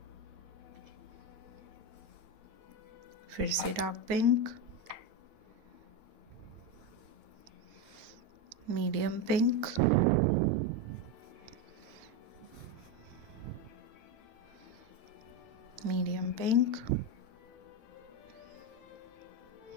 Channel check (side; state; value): left; late; 9.6 ms